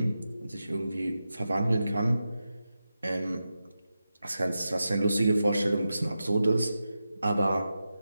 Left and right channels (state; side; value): inverted; both; correlation -0.91